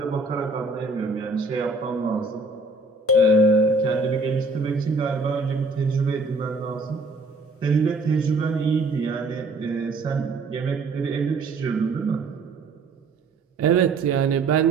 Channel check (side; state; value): left; quieter; 3.1 dB